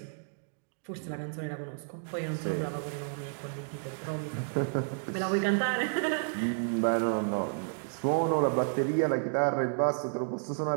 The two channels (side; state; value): left; silent; digital silence